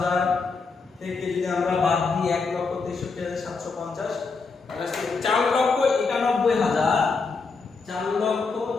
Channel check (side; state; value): right; quieter; 4.5 dB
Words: থেকে যদি আমরা বাদ দিই 1,63,750, তাহলে 4,91,000